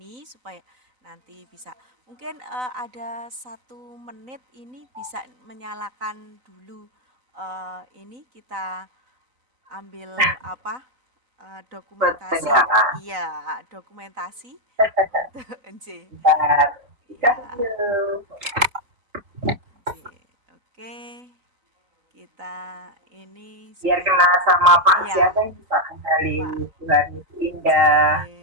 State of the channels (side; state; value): left; late; 3.8 ms